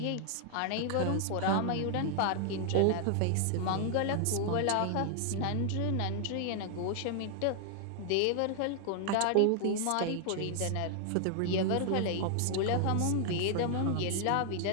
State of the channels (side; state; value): both; different; correlation 0.00